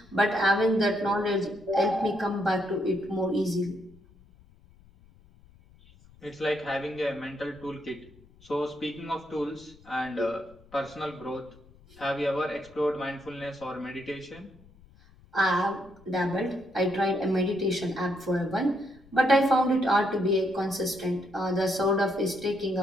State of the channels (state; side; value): noise; left; rumble, 26 dB below the sound